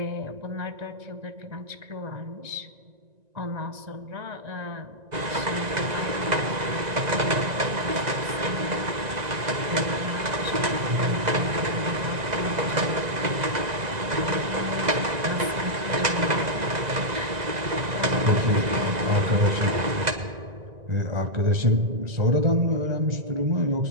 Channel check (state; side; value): late; left; 1.9 ms